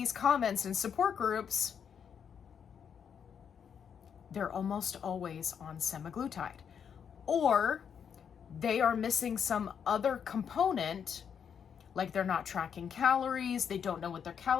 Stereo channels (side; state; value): right; quieter; 7.5 dB